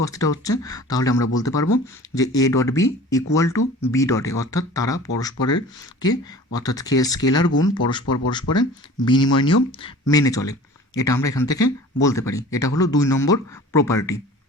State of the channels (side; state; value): both; normal; correlation 0.43